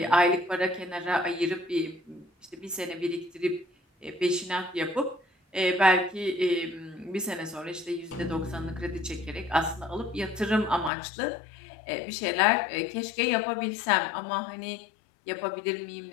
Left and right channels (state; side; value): drops out; right; at 10.9 s